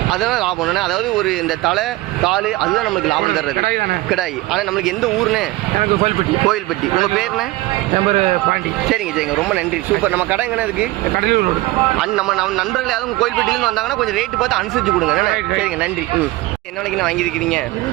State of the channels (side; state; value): left; quieter; 19.4 dB